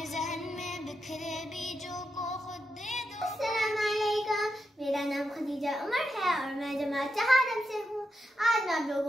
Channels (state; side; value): normal; both; correlation 0.86